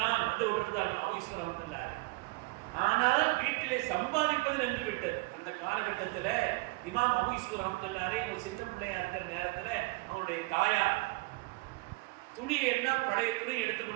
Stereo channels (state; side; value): quieter; left; 24.1 dB